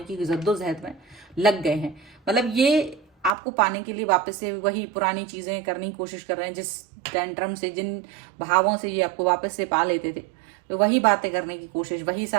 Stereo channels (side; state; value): left; drops out; at 3.3 s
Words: की जद्दोजहद में लग गए हैं। मतलब ये आपको पाने के लिए वापस से वही पुरानी चीजें करने की कोशिश कर रहे हैं, जिस टेंट्रम से, जिन भावों से ये आपको वापस से पा लेते थे, तो वही बातें करने की कोशिश, वही